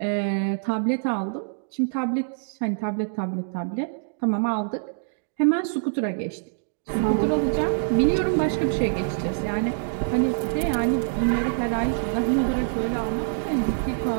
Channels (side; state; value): left; silent; digital silence